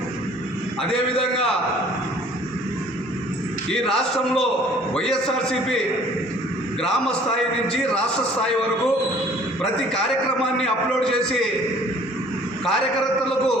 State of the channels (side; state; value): both; normal; correlation 0.54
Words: అదేవిధంగా ఈ రాష్ట్రంలో వైఎస్ఆర్సీపీ గ్రామ స్థాయి నుంచి రాష్ట్ర స్థాయి వరకు ప్రతి కార్యక్రమాన్ని అప్లోడ్ చేసి కార్యకర్తలకు